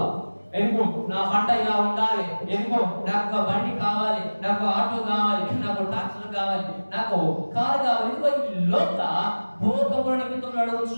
ఎందుకు నా పంట ఇలా ఉండాలి, ఎందుకు నాకు ఒక బండి కావాలి, నాకు ఆటో కావాలి, నాకు ట్రాక్టర్ కావాలి, నాకు కారు కావాలి, ఎందుకో ఈ లోక భోగముల నిమిత్తం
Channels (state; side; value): inverted; both; correlation -1.00